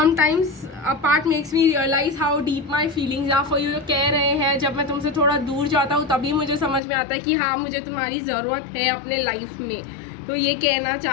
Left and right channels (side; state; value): right; drops out; at 6.8 s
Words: a part makes me realise how deep my feelings are for you. कह रहे हैं जब मैं तुमसे थोड़ा दूर जाता हूँ तभी मुझे समझ में आता है कि हाँ मुझे तुम्हारी ज़रूरत है अपने लाइफ में। तो ये कहना